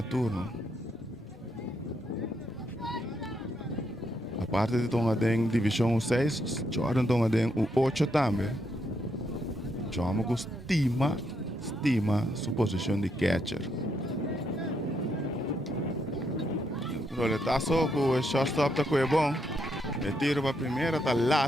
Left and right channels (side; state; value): both; normal; correlation 0.78